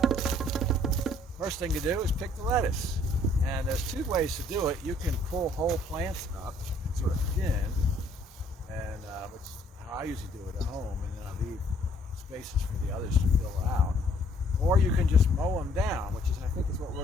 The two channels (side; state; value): both; normal; correlation 0.62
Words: first thing to do is pick the lettuce. And there's two ways to do it. You can pull whole plants up, sort of thin, and which is how I usually do it at home, and then I leave spaces for the others to fill out. Or you can just mow them down, which is, I think, is what